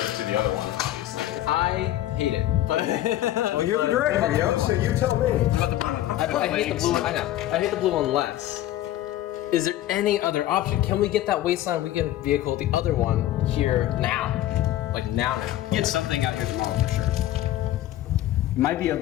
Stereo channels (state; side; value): quieter; right; 13.7 dB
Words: to the other one. I hate it. But well, you're the director, so you tell me. I hate the blue one. I know. I hate the blue one less. Is there any other option? Can we get that Wasteland Weekend vehicle, the other one, here now? Like now? Get something out here tomorrow for sure. Might be